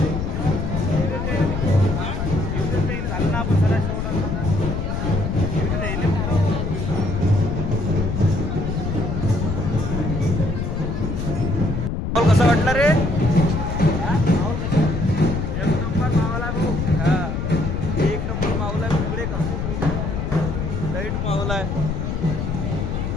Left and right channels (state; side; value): noise; left; rumble, 2 dB below the sound